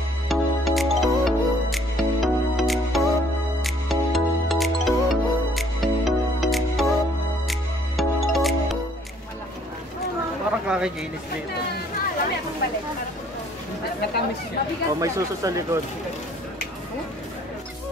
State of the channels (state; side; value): normal; both; correlation 0.60